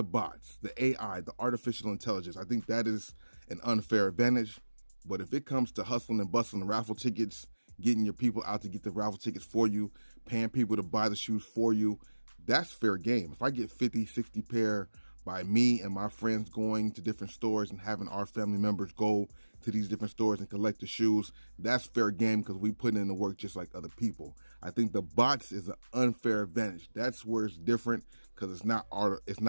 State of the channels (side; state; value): both; inverted; correlation -1.00